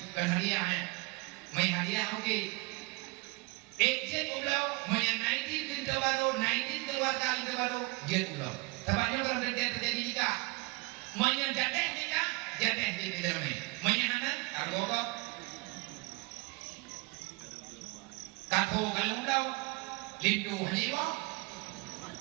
kan hadiah may hadiah oke. Ejek ulau may 19 baru, 19 keluarga baru, jet ulau. Tempatnya kalau terjadi nikah, may jadeh nikah, jadeh di dalamnya. May anak, kargokok, kato kalau ulau, lindu haniwa,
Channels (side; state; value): left; quieter; 25.5 dB